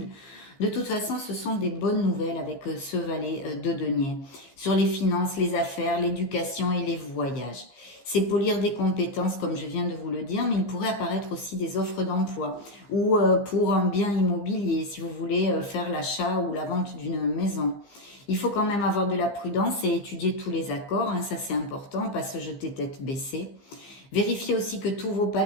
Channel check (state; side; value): late; right; 15 ms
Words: De toute façon, ce sont des bonnes nouvelles avec ce valet de denier. Sur les finances, les affaires, l'éducation et les voyages. C'est polir des compétences, comme je viens de vous le dire, mais il pourrait apparaître aussi des offres d'emploi ou pour un bien immobilier, si vous voulez faire l'achat ou la vente d'une maison. Il faut quand même avoir de la prudence et étudier tous les accords, hein, ça c'est important, pas se jeter tête baissée. Vérifiez aussi que tous vos